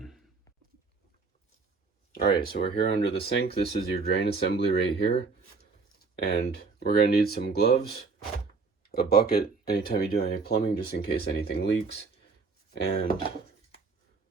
Alright, so we're here under the sink. This is your drain assembly right here. And we're going to need some gloves, a bucket anytime you do any plumbing just in case anything leaks, and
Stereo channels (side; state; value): left; quieter; 4.5 dB